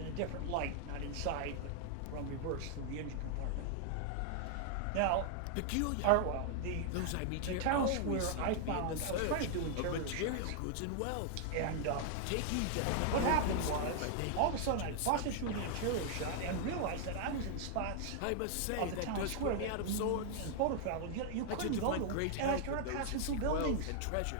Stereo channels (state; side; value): different; both; correlation 0.00